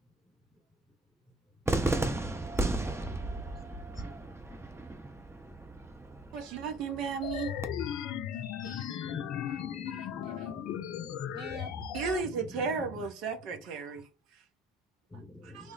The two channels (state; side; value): normal; both; correlation 0.50